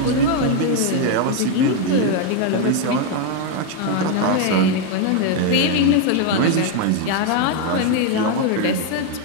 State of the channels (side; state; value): both; different; correlation 0.01